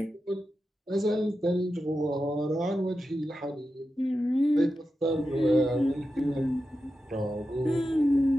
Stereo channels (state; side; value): normal; both; correlation 0.90